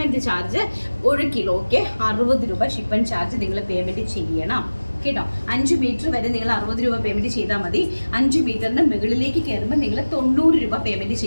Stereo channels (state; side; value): inverted; both; correlation -1.00